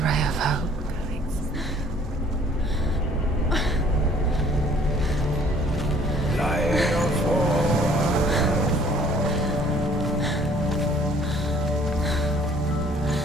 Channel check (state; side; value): normal; both; correlation 0.57